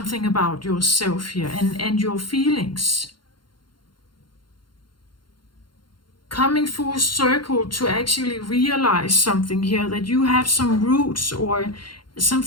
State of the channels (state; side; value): late; right; 0.72 ms